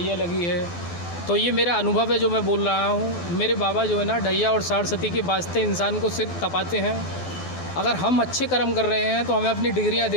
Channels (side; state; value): right; late; 12 ms